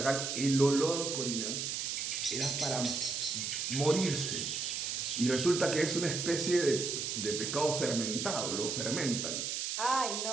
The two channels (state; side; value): noise; right; hiss, 2 dB below the sound